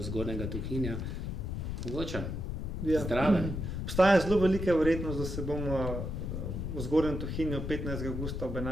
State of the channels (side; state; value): left; noise; rumble, 4 dB below the sound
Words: Zgornjega Tuhinja. Mogoče? Ja. Zdraven. Obstaja zelo velika verjetnost, da se bomo v Zgornjem Tuhinju 15. avgusta ob